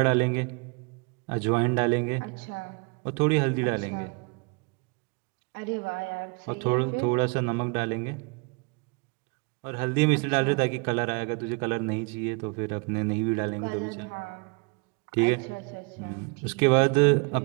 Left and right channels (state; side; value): quieter; left; 32.2 dB